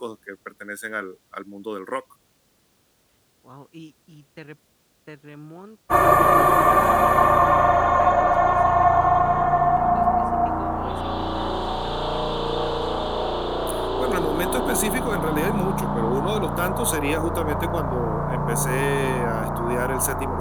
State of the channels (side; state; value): both; identical; correlation 1.00